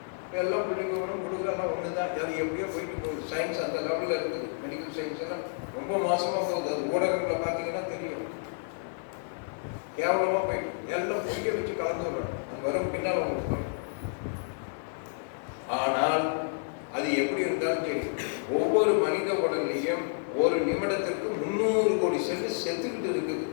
எல்லாம் புள்ளி விவரம் கொடுக்குறலாம் ஒன்று தான். அது எப்படியோ போயிட்டு போகுது. சயின்ஸ் அந்த லெவலில் இருக்குது. மெடிக்கல் சயின்ஸ் எல்லாம் ரொம்ப மோசமாக போகுது. அது ஊடகங்களை பார்த்தீங்கன்னா தெரியும். கேவலமாக போயிட்டு எல்லாம் பொய்ய வச்சு கலந்து விடுறோம். அது வரும் பின்னால் உங்களுக்கு சொல்றேன். ஆனால் அது எப்படி இருந்தாலும் சரி, ஒவ்வொரு மனித உடல்லையும் ஒரு நிமிடத்திற்கு 300 கோடி செல்லு செத்துக்கிட்டு இருக்குது.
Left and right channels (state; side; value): silent; right; 55 dB below the other